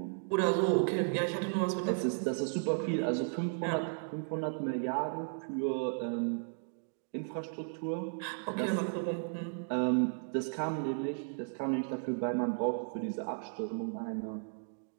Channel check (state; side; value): silent; left; digital silence